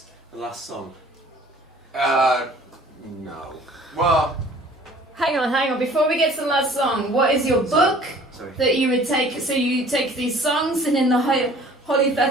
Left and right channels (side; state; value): both; normal; correlation 0.51